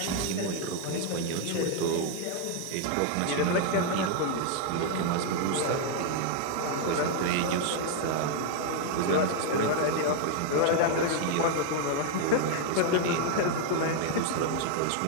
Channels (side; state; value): both; different; correlation 0.00